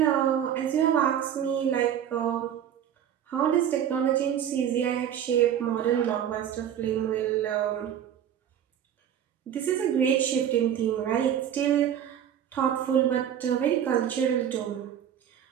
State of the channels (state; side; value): quieter; left; 9.7 dB